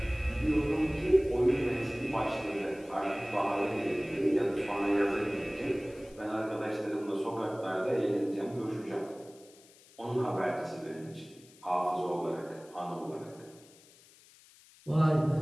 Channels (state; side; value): noise; left; hiss, 25 dB below the sound